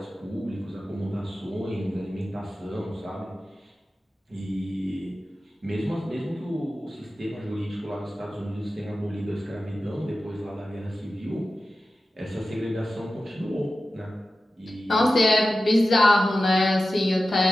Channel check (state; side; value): normal; both; correlation 0.94